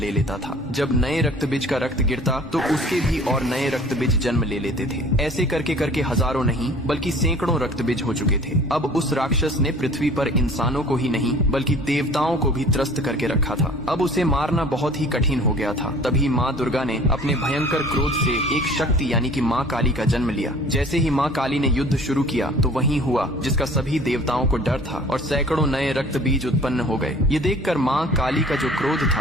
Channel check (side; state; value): both; normal; correlation 0.48